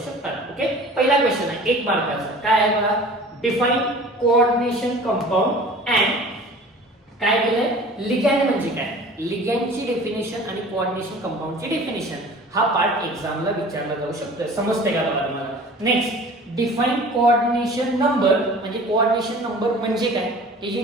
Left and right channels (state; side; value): normal; both; correlation 0.44